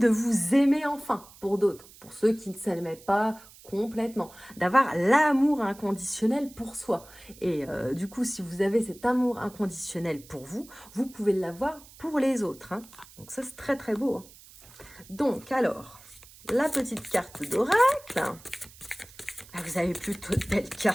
vous aimer enfin pour d'autres. Pour ceux qui ne s'aimaient pas complètement. D'avoir l'amour inconditionnel pour soi. Et du coup, si vous avez cet amour inconditionnel pour vous, vous pouvez l'avoir pour les autres. Hein. Donc ça, c'est très très beau. Hein. Donc, alors, la petite carte d'oracle. Ah, vous avez plutôt de belles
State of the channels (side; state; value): right; noise; hiss, 22 dB below the sound